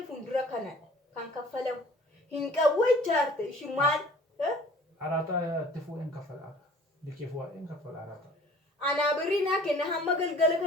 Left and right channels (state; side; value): normal; both; correlation 0.50